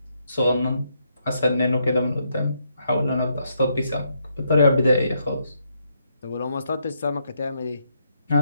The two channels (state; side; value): inverted; both; correlation -0.77